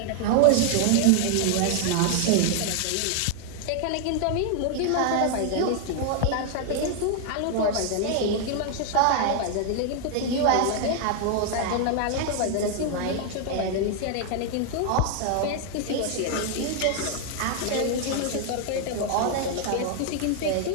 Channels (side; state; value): both; different; correlation 0.00